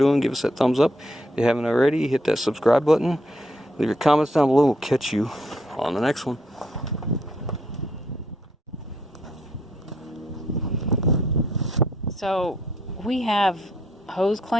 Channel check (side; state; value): both; normal; correlation 0.72